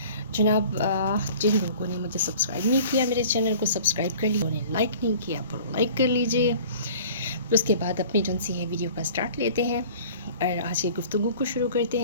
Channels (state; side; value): inverted; both; correlation -0.46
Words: जनाब, जिन लोगों ने मुझे सब्सक्राइब नहीं किया, मेरे चैनल को सब्सक्राइब कर लिया, उन्हें लाइक नहीं किया तो लाइक कर लीजिए। फिर उसके बाद अपनी जो सी है वीडियो का स्टार्ट लेते हैं और आज की गुफ्तगू को शुरू करते